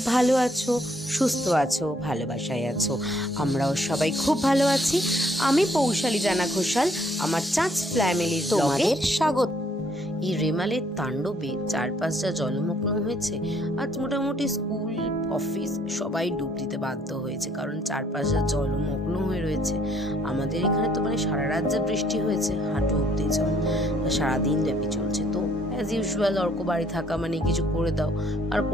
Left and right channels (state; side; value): normal; both; correlation 0.66